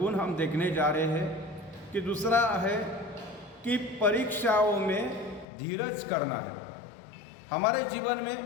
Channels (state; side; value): drops out; right; at 5.5 s